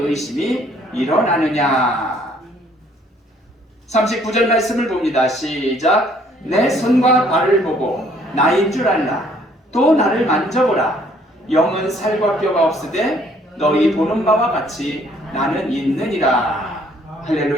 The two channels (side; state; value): both; normal; correlation 0.62